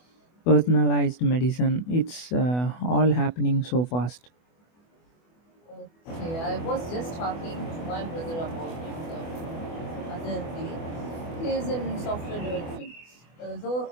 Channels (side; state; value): right; late; 24 ms